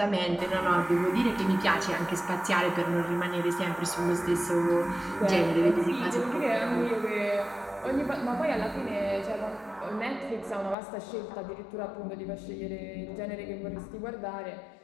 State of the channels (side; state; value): right; drops out; at 10.8 s